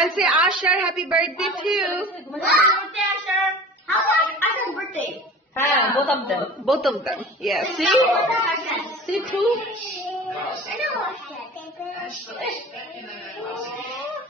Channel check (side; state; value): both; normal; correlation 0.39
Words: say Ashar happy birthday too. Happy birthday, Asher. How about Asher's birthday? Both of them. Both of them. Yeah. See? See too?